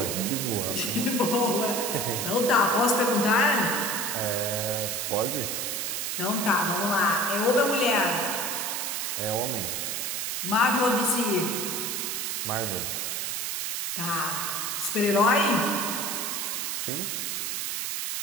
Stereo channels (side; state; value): right; noise; hiss, 2 dB below the sound